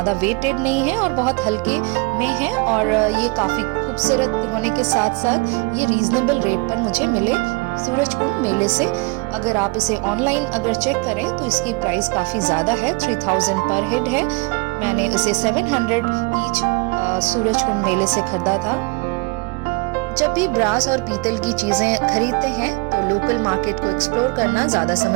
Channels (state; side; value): quieter; left; 28.2 dB